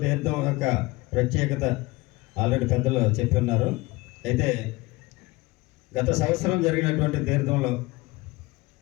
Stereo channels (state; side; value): quieter; right; 21.9 dB